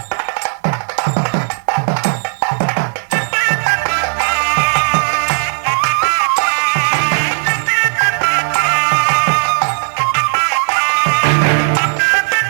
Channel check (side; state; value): left; silent; digital silence